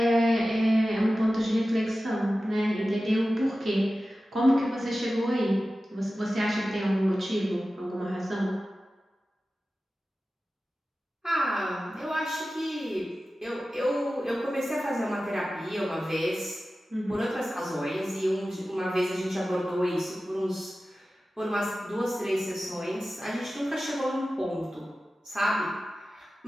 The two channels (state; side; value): normal; both; correlation 0.95